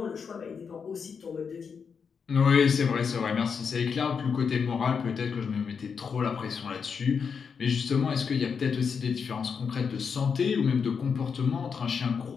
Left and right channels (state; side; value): quieter; right; 6.1 dB